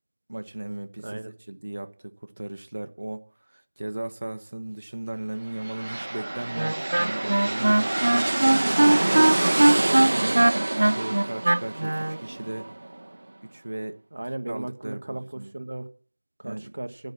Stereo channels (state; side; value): inverted; both; correlation -1.00